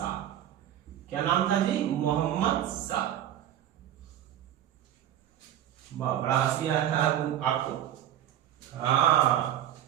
क्या नाम था जी, मोहम्मद शाह। बड़ा हंसी आया आपको, हाँ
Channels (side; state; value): left; quieter; 11.5 dB